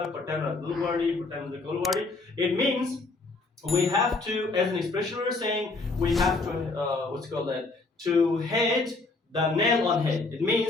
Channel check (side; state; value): right; quieter; 3.5 dB